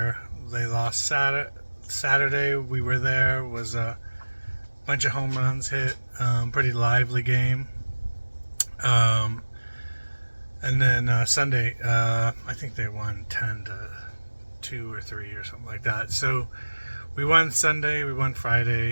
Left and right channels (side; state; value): both; inverted; correlation -1.00